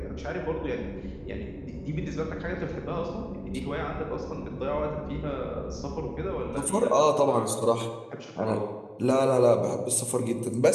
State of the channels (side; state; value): both; identical; correlation 1.00